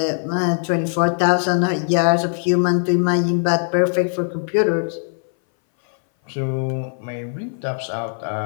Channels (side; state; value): right; silent; 61 dB below the other